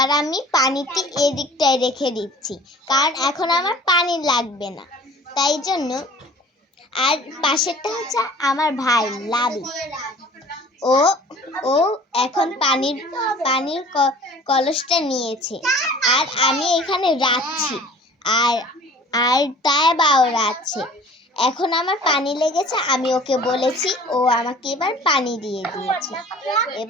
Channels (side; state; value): both; normal; correlation 0.47